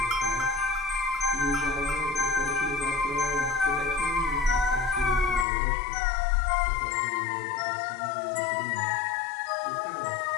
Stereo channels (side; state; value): right; drops out; at 5.5 s